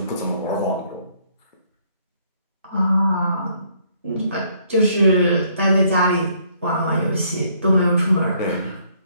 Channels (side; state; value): both; inverted; correlation -0.66